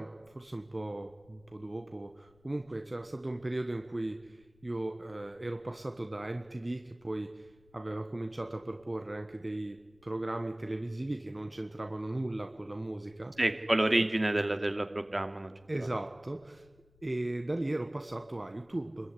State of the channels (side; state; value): left; noise; rumble, 28 dB below the sound